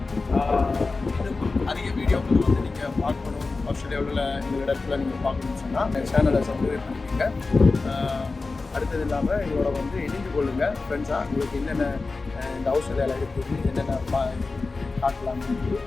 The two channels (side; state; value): right; quieter; 3.8 dB